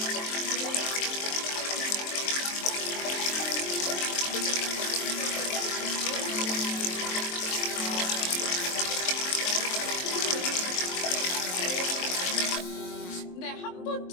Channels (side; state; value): right; late; 23 ms